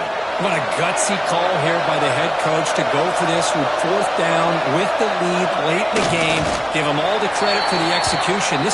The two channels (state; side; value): identical; both; correlation 1.00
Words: What a gutsy call here by the head coach to go for this with fourth down with the lead late in the game. Give them all the credit for the execution.